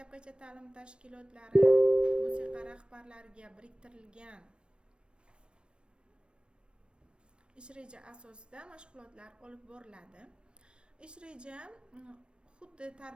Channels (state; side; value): late; left; 0.056 ms